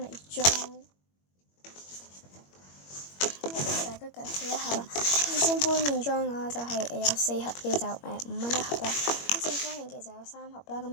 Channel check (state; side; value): late; right; 21 ms